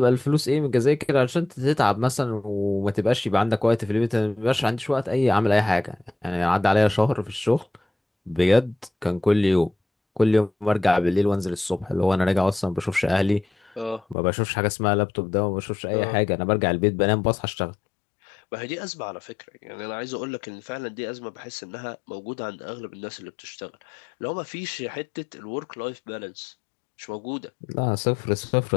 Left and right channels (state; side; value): drops out; right; at 14.2 s